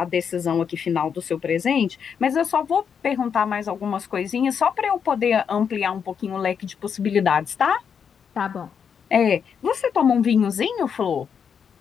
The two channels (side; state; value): right; quieter; 7.1 dB